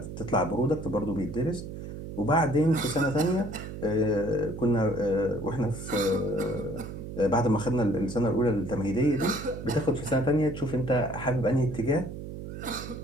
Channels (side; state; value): right; noise; hum, 9 dB below the sound